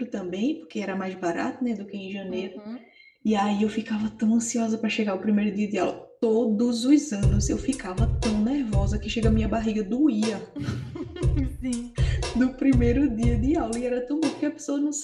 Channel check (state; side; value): identical; both; correlation 1.00